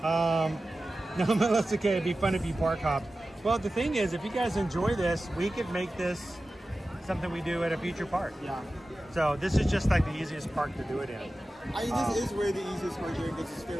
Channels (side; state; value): both; normal; correlation 0.95